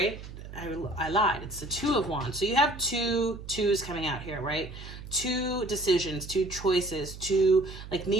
I lied. It's the Two of Wands. So you have two twos coming out here, right? Two decisions, two choices, two, like,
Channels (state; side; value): noise; right; hum, 13 dB below the sound